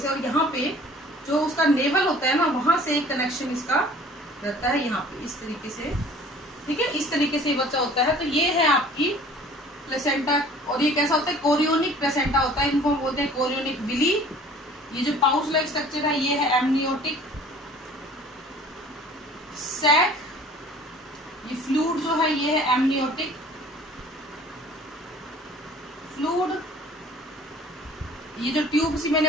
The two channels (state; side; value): normal; both; correlation 0.49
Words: और यहाँ पे जो उसका नेवल होता है ना, वहां से एक कनेक्शन इसका रहता है यहाँ पे इस तरीके से, ठीक है। इस तरीके से बच्चा होता है। तो ये है आपकी प्लेसेंटा, और ये कैसा होता है, कोरियोनिक प्लेसेंटा होता है, इनको हम बोलते हैं कोरियोनिक विली। ये जो पाउच लाइक स्ट्रक्चर है ये है एमनियोटिक सैक, ये फ्लूइड जो है ये है एमनियोटिक फ्लूइड, ये जो ट्यूब सी मैंने